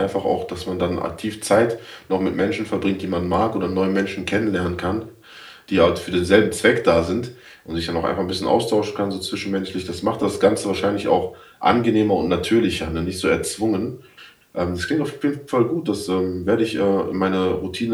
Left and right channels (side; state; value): both; identical; correlation 1.00